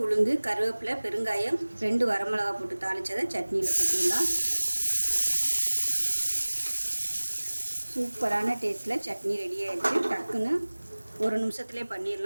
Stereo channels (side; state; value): both; inverted; correlation -1.00